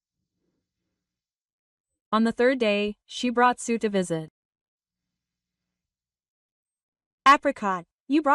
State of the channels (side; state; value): both; identical; correlation 1.00